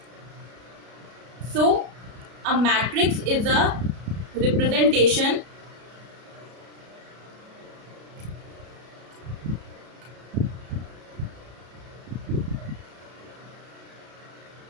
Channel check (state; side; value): late; left; 33 ms